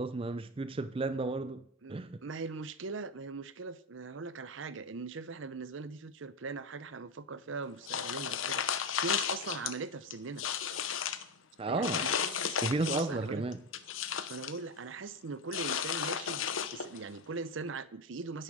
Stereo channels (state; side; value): normal; both; correlation 0.14